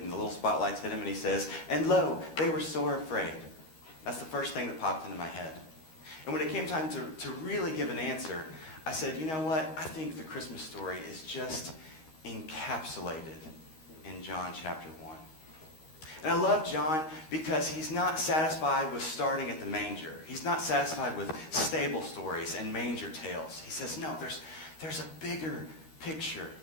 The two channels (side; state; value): right; late; 13 ms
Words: the little spotlights hit him and he says, "And lo, they were sore afraid." That's the first thing that popped into my head. And when it came time to really give an answer, I said, you know what? I think the Christmas story is just encapsulated in John chapter 1. And I love John because he's not satisfied with starting at the manger. He's not satisfied with stable stories and manger tales. He says, no, there's a bigger picture